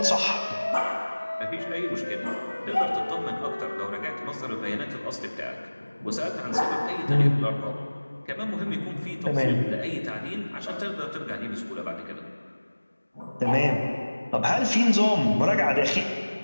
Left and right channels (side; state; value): both; inverted; correlation -1.00